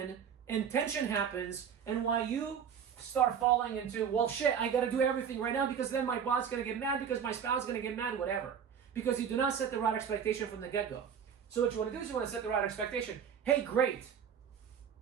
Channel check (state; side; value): quieter; left; 7.6 dB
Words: and tension happens, and why you start falling into, well, shit, I got to do everything right now because then my boss is going to get mad, because my spouse is going to get mad, whatever. Because you do not set the right expectation from the get-go. So what you want to do is you want to set the right expectation. Hey, great.